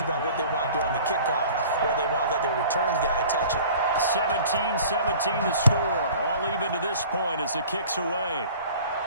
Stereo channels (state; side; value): inverted; both; correlation -0.46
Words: about what they want to do on the kickoff, or they want to let their return guy touch it. 17-17 the score. All even to this point as the kick's away.